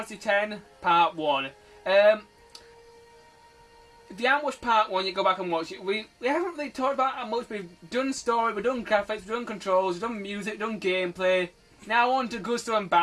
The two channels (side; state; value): both; identical; correlation 1.00